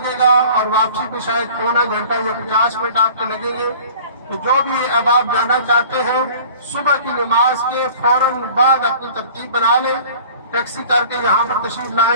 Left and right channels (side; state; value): both; inverted; correlation -0.46